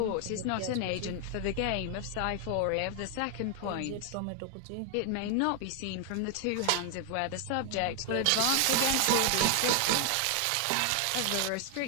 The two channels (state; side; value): different; both; correlation 0.00